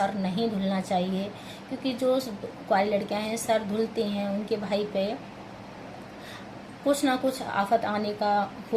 नहीं धुलना चाहिए, क्योंकि जो कुंवारी लड़कियाँ हैं सर धुलती हैं उनके भाई पे कुछ ना कुछ आफत आने का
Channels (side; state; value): both; identical; correlation 1.00